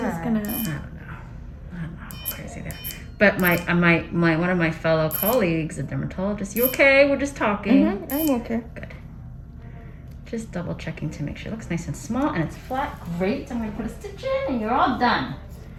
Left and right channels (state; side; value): identical; both; correlation 1.00